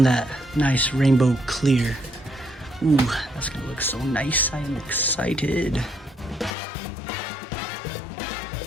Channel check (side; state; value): right; drops out; at 6.6 s